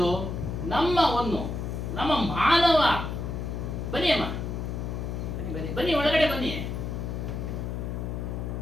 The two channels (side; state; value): left; noise; hum, 4 dB below the sound